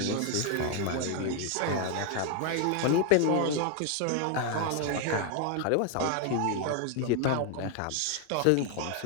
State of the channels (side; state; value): both; different; correlation 0.00